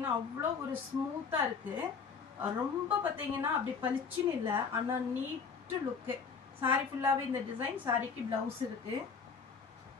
அவ்வளோ ஒரு ஸ்மூத்தா இருக்கு. ரொம்ப பாத்தீங்கன்னா அப்படி பளிச்சுன்னு இல்ல, ஆனா நீட் லுக். saree ஃபுல்லாவே இந்த டிசைன். சாரிக்கு பிளவுஸ் இருக்கு.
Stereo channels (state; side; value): quieter; right; 5.6 dB